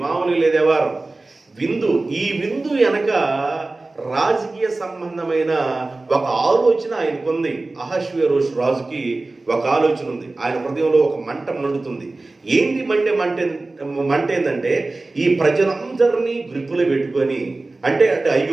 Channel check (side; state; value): left; quieter; 3.2 dB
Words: మామూలుగా లేదే వారం విందు. ఈ విందు వెనక రాజకీయ సంబంధమైన ఒక ఆలోచన ఆయనకుంది. అహష్వేరోషు రాజుకి ఒక ఆలోచన ఉంది. ఆయన హృదయంలో ఒక మంట మండుతుంది. ఏంటి మంట ఏంటంటే, ఈ ప్రజలందరినీ గ్రిప్పులో పెట్టుకొని, అంటే